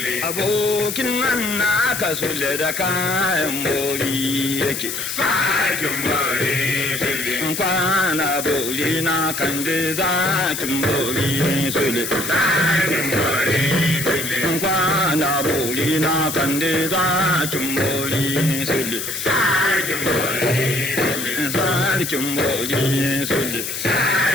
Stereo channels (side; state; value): left; noise; hiss, 4 dB below the sound